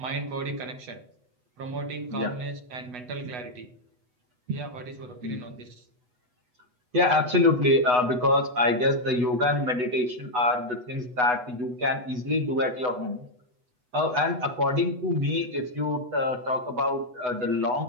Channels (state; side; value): late; left; 8.1 ms